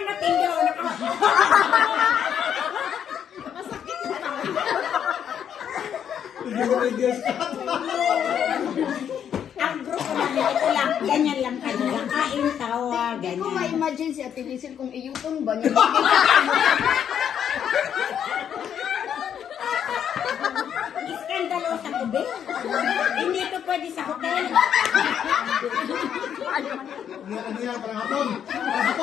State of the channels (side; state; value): right; quieter; 8.8 dB